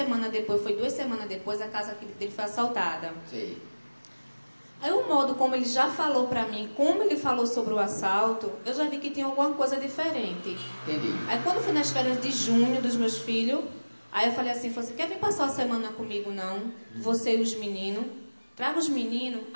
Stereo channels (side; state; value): both; inverted; correlation -1.00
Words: depois, foi 2 semanas depois, a casa dele foi assaltada. Sei. Aí o modo como ele já falou pra mim, como ele falou sobre o assalto, eu já vi que tinha alguma coisa diferente. Entendi. Aí quando foi nas férias de junho dos meus filhos, aí eu falei assim, quer vir passar a semana comigo não? Você e os meninos? Traga os meninos?